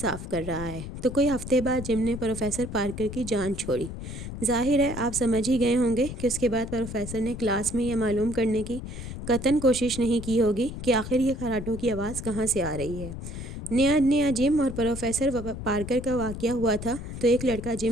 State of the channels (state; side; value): noise; left; rumble, 9 dB below the sound